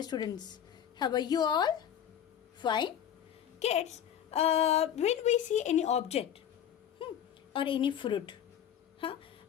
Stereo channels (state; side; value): quieter; right; 9.6 dB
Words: students. How are you all? Fine. Kids, when we see any object or any fruit,